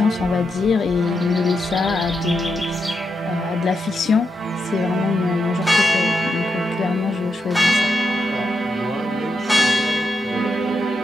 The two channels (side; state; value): both; normal; correlation 0.85